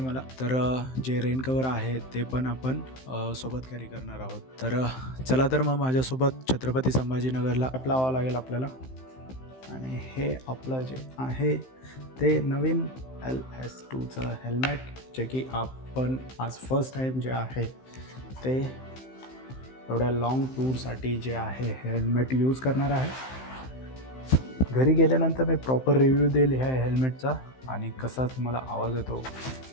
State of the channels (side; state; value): right; late; 15 ms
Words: तर जे रेन कवर आहे ते पण आपण सोबत कॅरी करणार आहोत. तर चला तर मग माझ्यासोबत छत्रपती संभाजीनगरला लावावं लागेल आपल्याला. आणि हे आपलं जे आहे ते नवीन LS2चं हेल्मेट, जे की आपण आज फर्स्ट टाईम जे आहे ते एवढ्या लॉंग टूरसाठी जे आहे हेल्मेट यूज करणार आहे. घरी गेल्यानंतर मी प्रॉपर रिव्ह्यू देईल ह्या हेल्मेटचा आणि कसा तुम्हाला आवाज येतो